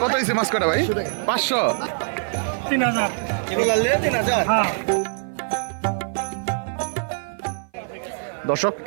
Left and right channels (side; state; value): left; silent; 55 dB below the other